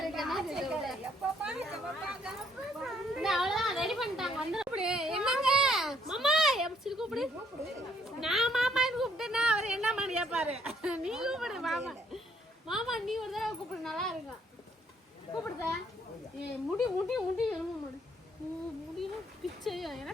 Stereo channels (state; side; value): normal; both; correlation 0.66